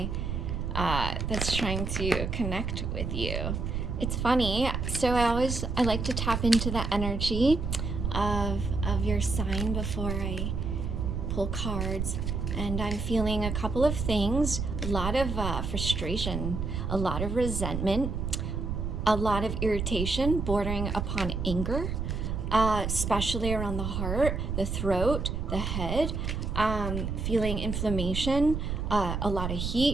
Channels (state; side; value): noise; right; rumble, 2 dB below the sound